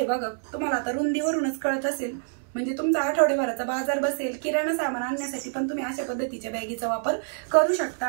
बघा. तुम्हाला आता रुंदीवरूनच कळत असेल, म्हणजे तुमचा आठवड्याभराचा बाजार बसेल. किराणा सामान आणण्यासाठी पण तुम्ही अशा पद्धतीच्या बॅगीचा वापर करू शकता.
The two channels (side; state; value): left; silent; digital silence